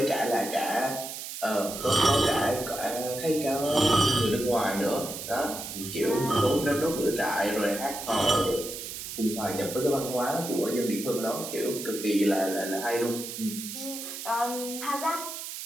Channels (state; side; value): noise; right; hiss, 8 dB below the sound